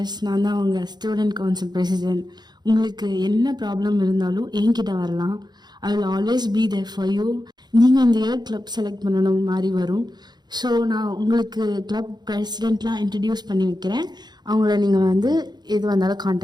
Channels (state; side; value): late; left; 0.20 ms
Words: நான் தான் உங்கள் ஸ்டூடெண்ட் கவுன்சில் பிரசிடென்ட். உங்களுக்கு என்ன ப்ராப்ளம் இருந்தாலும் என்கிட்ட வரலாம். I will always be there for you. நீங்கள் இந்த இயர் கிளப் செலக்ட் பண்ணணும் மாதிரி வரும். ஸோ நான் உங்களுக்கு கிளப் பிரசிடெண்ட்லாம் இன்ட்ரடியூஸ் பண்ணி வைக்கிறேன், அவங்கள நீங்கள் வந்து எது வந்தாலும்